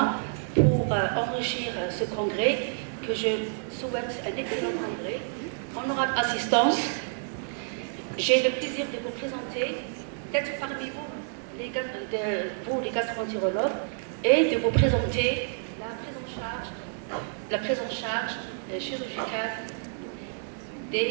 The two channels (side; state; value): left; silent; digital silence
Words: pour enrichir ce congrès, que je souhaite un excellent congrès. Honorable assistance, j'ai le plaisir de vous présenter, d'être parmi vous, les gastro-entérologues, et de vous présenter la prise en charge chirurgicale